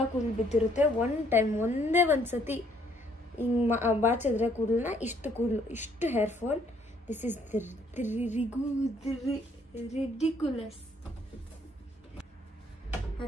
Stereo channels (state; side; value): normal; both; correlation 0.65